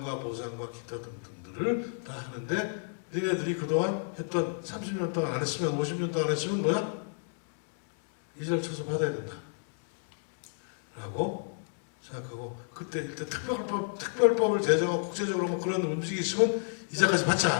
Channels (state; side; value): silent; right; digital silence